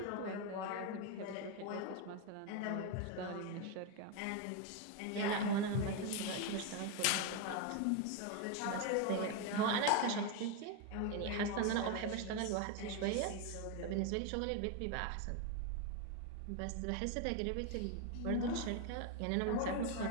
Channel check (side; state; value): both; different; correlation 0.02